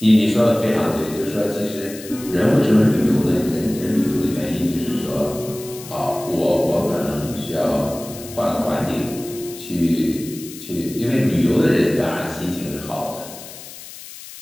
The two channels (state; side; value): noise; left; hiss, 15 dB below the sound